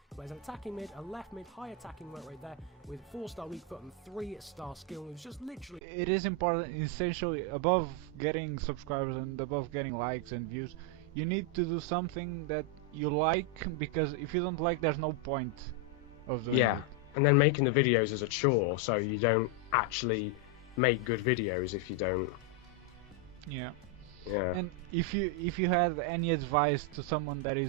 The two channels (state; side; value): normal; both; correlation 0.02